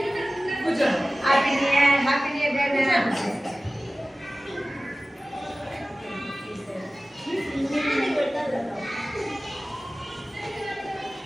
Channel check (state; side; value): normal; both; correlation 0.97